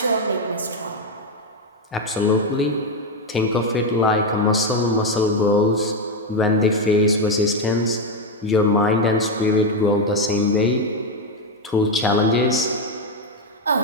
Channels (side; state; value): both; normal; correlation 0.06